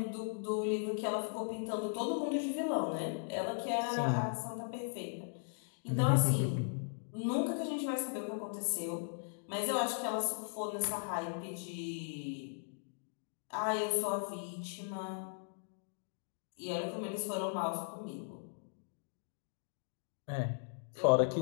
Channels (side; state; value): right; silent; digital silence